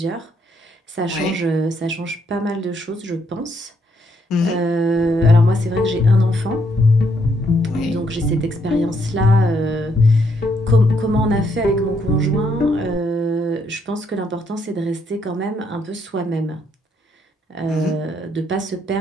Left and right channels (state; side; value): normal; both; correlation 0.73